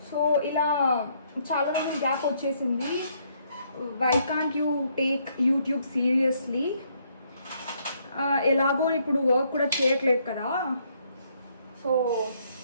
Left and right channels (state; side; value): inverted; both; correlation -0.70